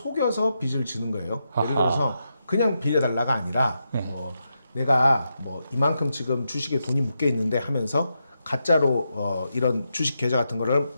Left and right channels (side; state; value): both; inverted; correlation -0.85